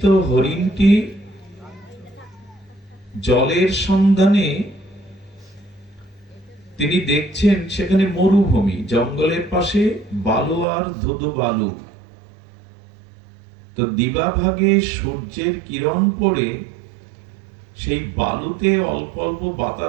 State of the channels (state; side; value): drops out; left; at 10.7 s